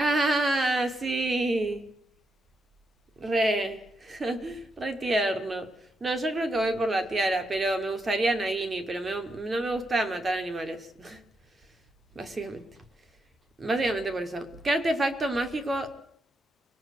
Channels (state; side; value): normal; both; correlation 0.82